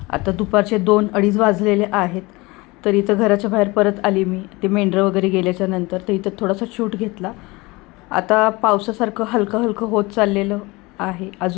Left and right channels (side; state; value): right; quieter; 23.3 dB